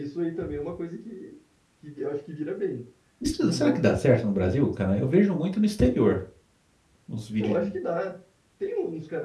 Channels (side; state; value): both; identical; correlation 1.00